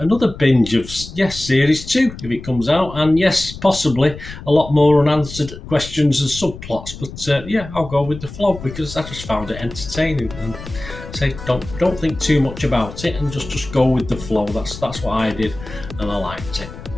binge of, Series 2, if it comes out. And yes, possibly a lot more unanswered questions and subplots. But I'll go with the flow because I just found it entertaining. And say, don't think too much about it and just go with the flow. That's what I did, and I liked it.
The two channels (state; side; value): noise; left; rumble, 13 dB below the sound